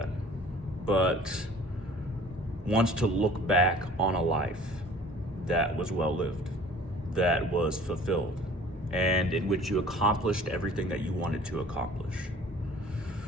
but wants to look back on a life that was well lived, that was fulfilled, and in which you accomplished everything that you wanted to accomplish.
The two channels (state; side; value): normal; both; correlation 0.49